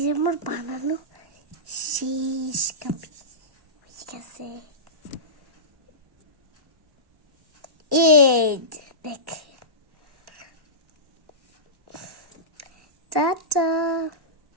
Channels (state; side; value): late; left; 1.1 ms